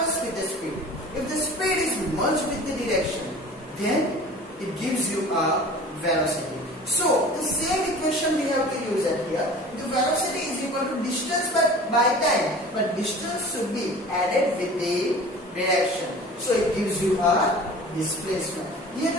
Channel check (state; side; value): normal; both; correlation 0.41